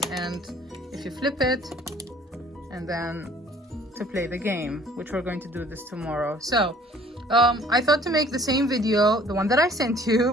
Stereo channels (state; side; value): normal; both; correlation 0.54